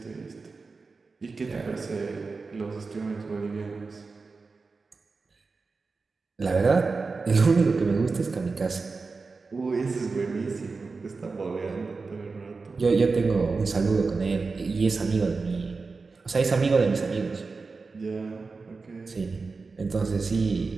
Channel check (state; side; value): quieter; left; 4.3 dB